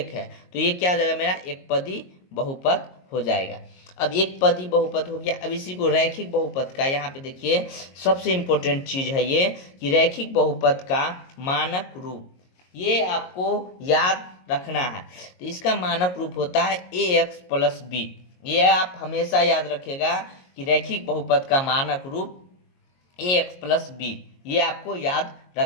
है तो ये क्या हो जाएगा मेरा एक पदी बहुपद हो जाएगा। अब एक पदी बहुपद हो गया। अब इसी को रैखिक बहुपद का, यहाँ पे देखिए सबसे इम्पोर्टेंट चीज है ये कि रैखिक बहुपद का मानक रूप, ये आपको याद रखना है। तो इसका मानक रूप होता है ax + b। ये आप हमेशा याद रखिएगा कि रैखिक बहुपद का मानक रूप ax + b, ये आपको याद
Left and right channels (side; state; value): right; late; 22 ms